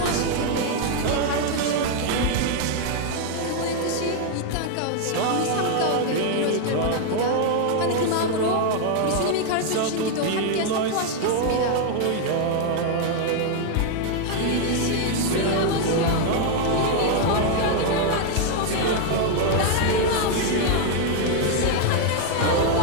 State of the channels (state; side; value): different; both; correlation 0.00